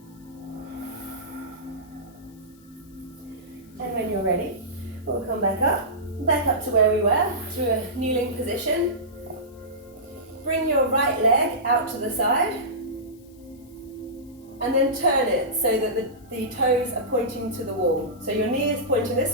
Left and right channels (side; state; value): left; noise; hiss, 29 dB below the sound